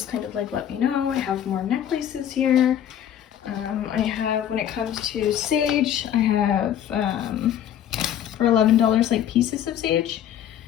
kind of like let me know. I have more necklaces here. I have, when it comes to sage, I have for $11 like pieces of sage.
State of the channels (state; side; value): quieter; right; 10.2 dB